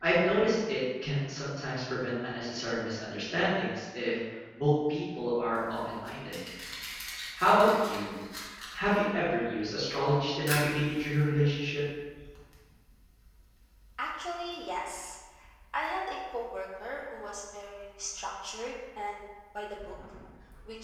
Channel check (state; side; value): identical; both; correlation 1.00